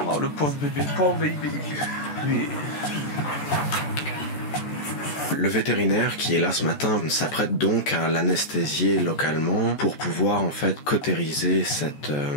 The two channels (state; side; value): late; right; 14 ms